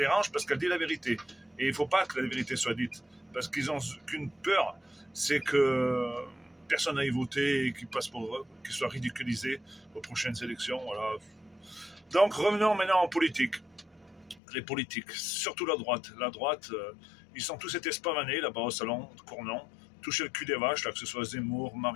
parce qu'elle dit la vérité. Et il ne faut pas que la vérité soit dite, parce qu'ils ont qu'une peur, c'est que personne n'aille voter et qu'ils soient ridiculisés aux prochaines élections. Voilà. Donc revenons maintenant en politique. Les politiques, surtout la droite. La droite, ils sont tous été spavanés là-bas au salon de Cournon, toucher le cul des vaches, là, que ce soit Zemmour,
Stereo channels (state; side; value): drops out; right; at 14.4 s